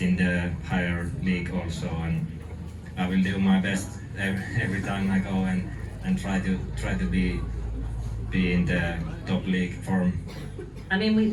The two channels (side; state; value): both; identical; correlation 1.00